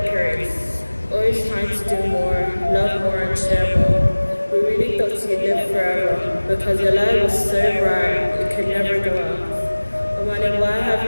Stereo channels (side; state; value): both; inverted; correlation -1.00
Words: race, always trying to do more, love more, and share more. We really thought you'd live forever, because your life was so bright it could never go out. Amani, why have